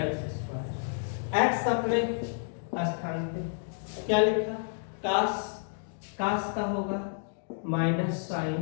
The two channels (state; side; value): silent; right; digital silence